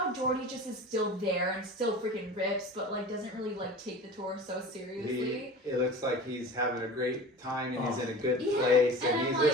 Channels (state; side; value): normal; both; correlation 0.37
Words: Jordy just is still there and still freaking rips, but like doesn't really like take the tour so seriously. It looks like he's having a great time and he's in a good place, and he's